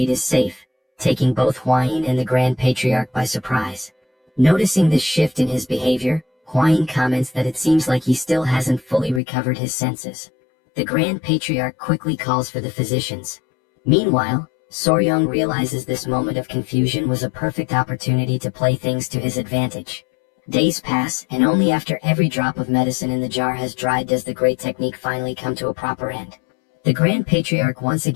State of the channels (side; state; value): right; drops out; at 9.2 s